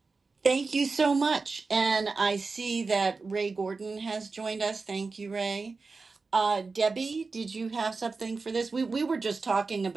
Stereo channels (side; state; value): left; quieter; 4.2 dB